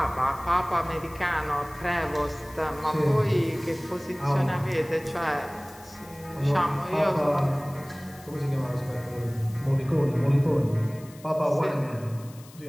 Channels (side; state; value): left; noise; hiss, 22 dB below the sound